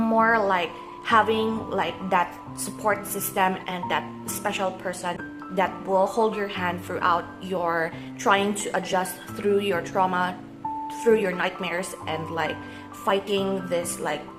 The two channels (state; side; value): identical; both; correlation 1.00